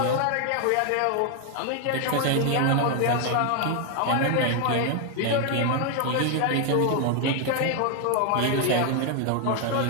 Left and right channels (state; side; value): different; both; correlation 0.00